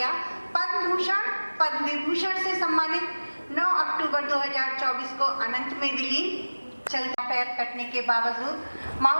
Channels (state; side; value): inverted; both; correlation -1.00